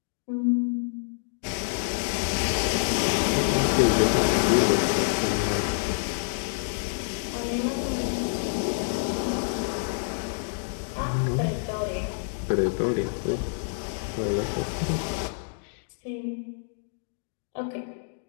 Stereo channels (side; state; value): right; silent; digital silence